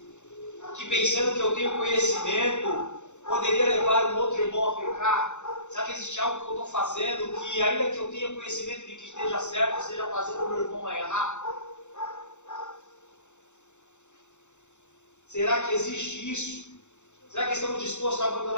que pensando que eu tenho conhecimento, poderia levar um outro irmão a pecar? Será que existe algo que eu estou fazendo, que ainda que eu tenha conhecimento de que esteja certo, esteja fazendo o meu irmão a errar? Será que existe isso? Será que estamos dispostos a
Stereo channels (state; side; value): late; right; 0.84 ms